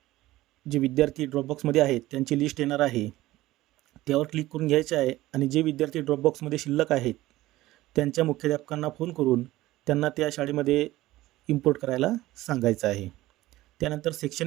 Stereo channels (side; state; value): left; quieter; 16.9 dB